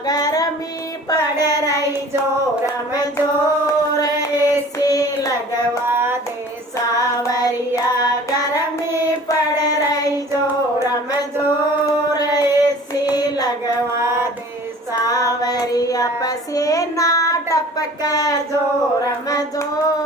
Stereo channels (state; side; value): normal; both; correlation 0.46